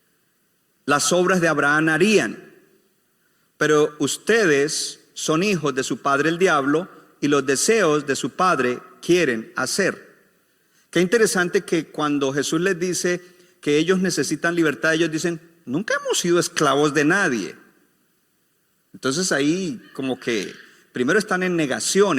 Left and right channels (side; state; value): both; identical; correlation 1.00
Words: las obras de Abraham harían. Pero ustedes son hijos de su padre el diablo, y los deseos de su padre quieren hacer. Qué interesante que cuando Jesús les dice que ellos necesitan libertad, ellos dicen: nunca hemos sido esclavos de nadie. Entonces ahí como que primero están en negación,